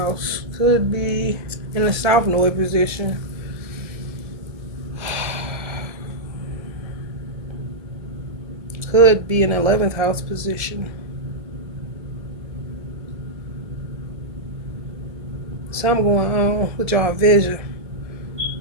Could be in the South Node position. Could be in 11th house position. Something going on with y'all vision.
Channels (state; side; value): late; left; 1.7 ms